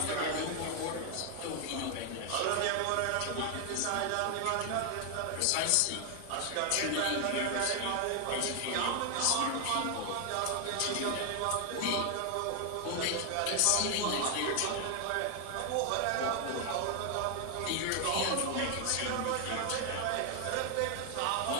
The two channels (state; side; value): different; both; correlation 0.00